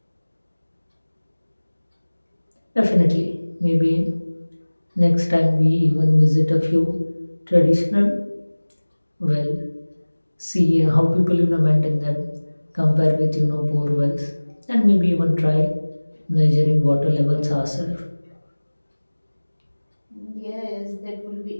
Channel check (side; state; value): both; inverted; correlation -1.00